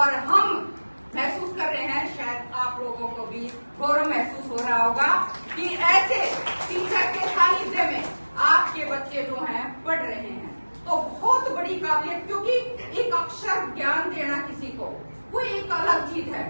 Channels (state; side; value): inverted; both; correlation -1.00